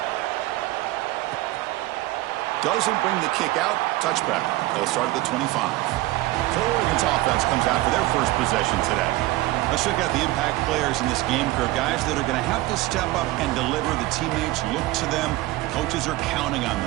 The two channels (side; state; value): left; quieter; 18.1 dB